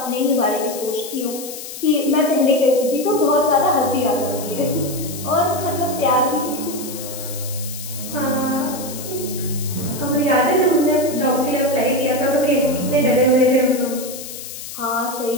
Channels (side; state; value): left; noise; hiss, 11 dB below the sound